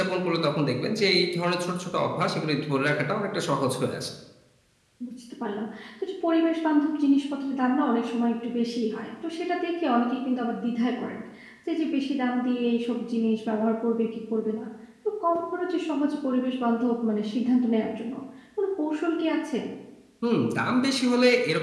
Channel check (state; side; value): identical; both; correlation 1.00